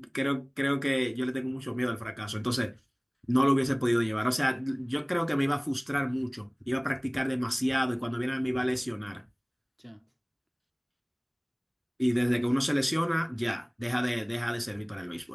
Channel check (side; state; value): both; identical; correlation 1.00